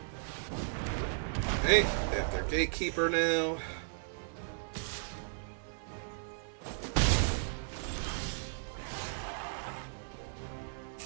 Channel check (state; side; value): silent; left; digital silence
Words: Hey, they have their Gatekeeper now.